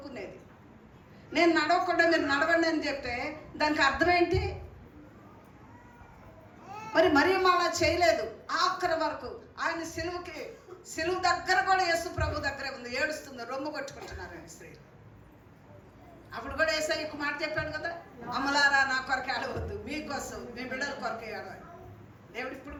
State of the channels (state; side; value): identical; both; correlation 1.00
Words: నేను నడవకుండా మీరు నడవండి అని చెప్తే దానికి అర్థం ఏంటి? మరి అలా చేయలేదు. ఆఖరి వరకు ఆయన సిలువు దగ్గర కూడా యేసు ప్రభు దగ్గరే ఉంది. ఏడుస్తుంది, రొమ్ము కొట్టుకుంటున్నారు స్త్రీలు. అప్పుడు కూడా యేసయ్య ఒక మాట చెప్పాడు కదా, అమ్మలారా నా కొరకు ఏడవద్దు, మీకోసం మీ బిడ్డల కొరకు ఏడవాలి. దేవుడు ఇప్పుడు